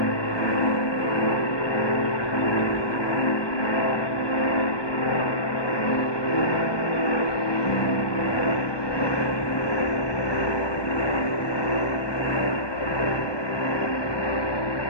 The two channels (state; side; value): late; right; 1.2 ms